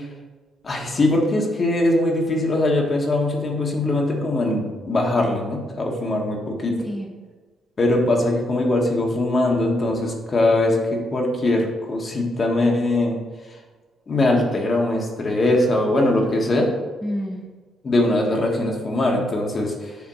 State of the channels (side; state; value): both; normal; correlation 0.78